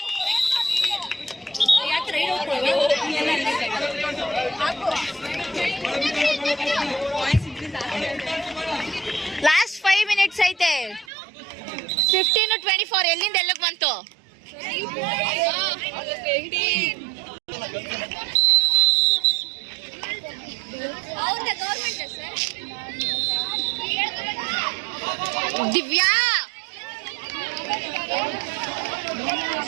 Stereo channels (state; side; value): drops out; left; at 11.1 s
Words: Last 5 minutes ಐತೆ. 15-24 ಎಲ್ಲಿಂದ ಎಲ್ಲಿಗೆ ಬಂತು? ದಿವ್ಯಾ